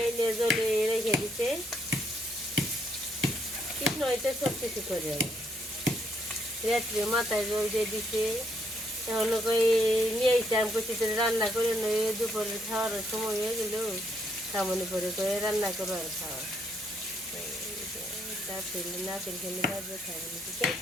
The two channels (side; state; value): both; normal; correlation 0.73